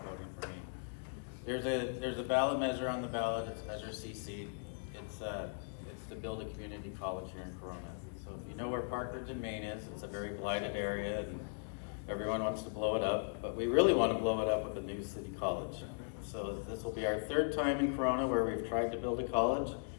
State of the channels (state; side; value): silent; right; digital silence